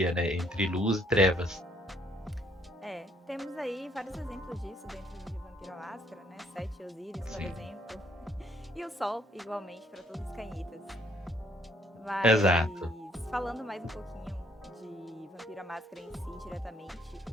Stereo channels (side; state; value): both; normal; correlation 0.66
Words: né, entre luz e trevas. É, temos aí vários exemplos disso dentro de Vampiro à Máscara, né? Sete Osíris, por Sim, exemplo. E o Sol, igualmente, para todos os cainitas. exato. Mas falando mais um pouquinho de Vampiro à Máscara em si, diretamente,